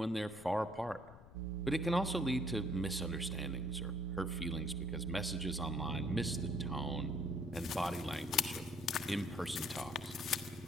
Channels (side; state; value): left; noise; rumble, 19 dB below the sound